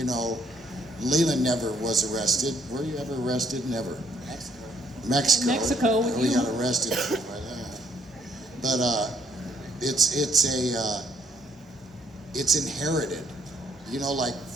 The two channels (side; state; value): both; normal; correlation 0.68